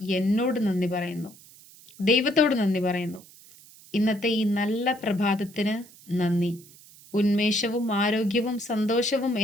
എന്നോട് നന്ദി പറയുന്നു, ദൈവത്തോട് നന്ദി പറയുന്നു. ഇന്നത്തെ ഈ നല്ല പ്രഭാതത്തിന് നന്ദി. ഉന്മേഷവും ആരോഗ്യവും സന്തോഷവും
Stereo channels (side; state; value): right; noise; hiss, 23 dB below the sound